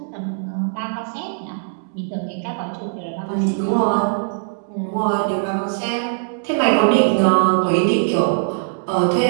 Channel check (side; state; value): left; silent; digital silence